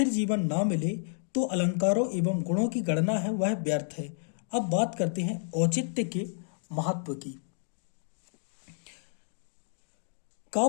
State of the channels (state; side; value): silent; right; digital silence